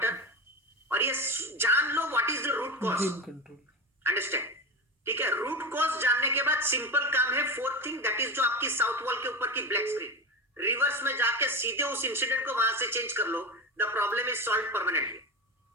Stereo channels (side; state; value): both; normal; correlation 0.22